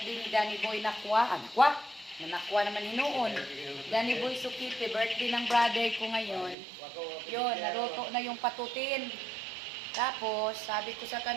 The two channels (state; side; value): drops out; left; at 6.6 s